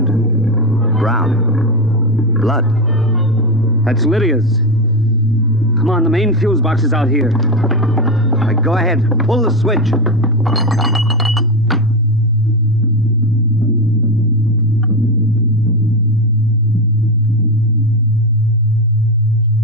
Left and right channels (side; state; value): both; normal; correlation 0.12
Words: Brown. Blood. That's Lydia's. Come on, the main fuse box is out here. Go ahead. Pull the switch.